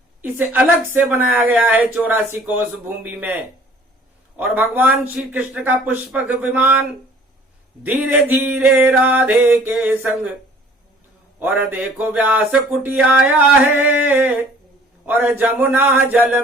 इसे अलग से बनाया गया है 84 कोस भूमि में। और भगवान श्री कृष्ण का पुष्पक विमान धीरे धीरे राधे के संग, और देखो व्यास कुटी आया है, और जमुना जल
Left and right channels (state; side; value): normal; both; correlation 0.53